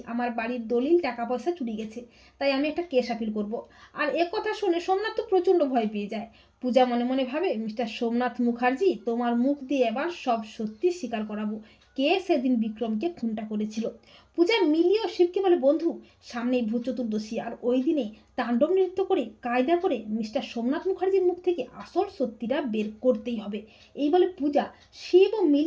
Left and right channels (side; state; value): both; identical; correlation 1.00